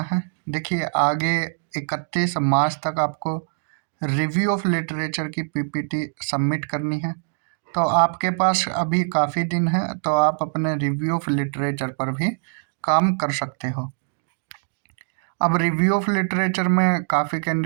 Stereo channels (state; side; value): silent; left; digital silence